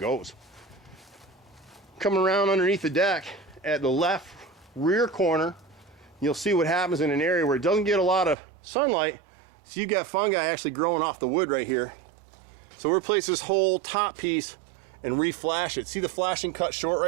Coming around underneath the deck at the left rear corner, you'll see what happens in an area where it doesn't get a lot of sunlight. So you got fungi actually growing off the wood right here. So we'll replace this whole top piece and re-flash it. See the flashing cut short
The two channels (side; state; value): left; drops out; at 8.3 s